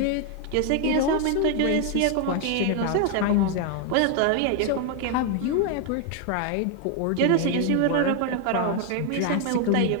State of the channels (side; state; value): both; different; correlation 0.00